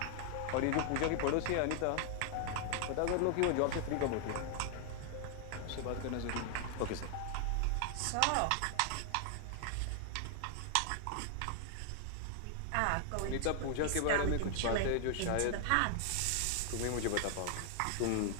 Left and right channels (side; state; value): both; different; correlation 0.00